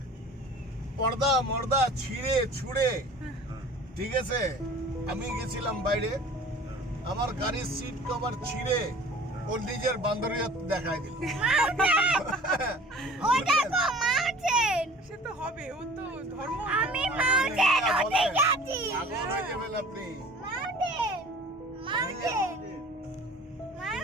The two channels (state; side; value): normal; both; correlation 0.45